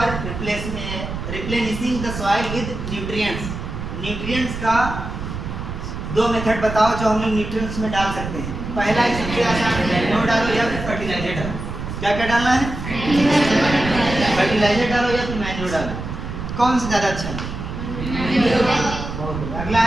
replenishing the soil with nutrients. Nutrients का 2 मेथड बताओ जो हम लोग न्यूट्रिएंट्स में डाल सकते हैं। पहला है सबसे आसान, मैन्योर डालो या फिर फर्टिलाइजर डालो। क्या क्या डालना है? फर्टिलाइजर डालो या फिर मैन्योर डालो। कौन सा ज़्यादा अच्छा है? अगला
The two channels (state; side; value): noise; right; rumble, 7 dB below the sound